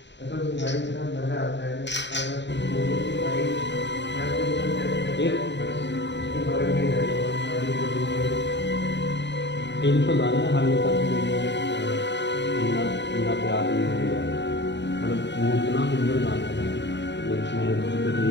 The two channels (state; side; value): late; right; 0.52 ms